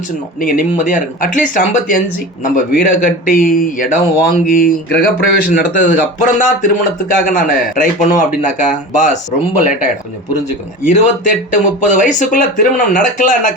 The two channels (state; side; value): normal; both; correlation 0.32